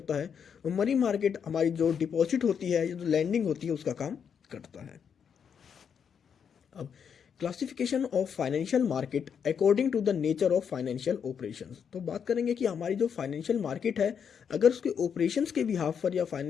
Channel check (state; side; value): quieter; right; 7.3 dB